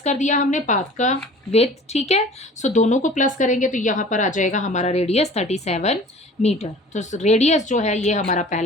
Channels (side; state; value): both; normal; correlation 0.45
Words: कर दिया हमने पाथ का विड्थ। ठीक है, सो दोनों को प्लस करेंगे तो यहाँ पर आ जाएगा हमारा रेडियस 37 मीटर। तो रेडियस जो है ये हमारा